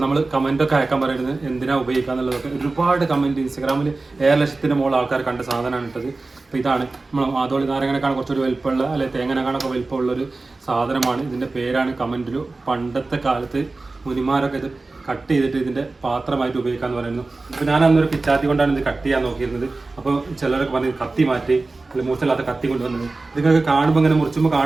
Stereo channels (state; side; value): quieter; left; 3.4 dB